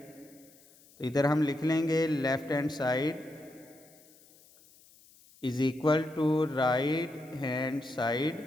इधर हम लिख लेंगे left hand side is equal to right hand side,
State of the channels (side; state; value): left; noise; hiss, 27 dB below the sound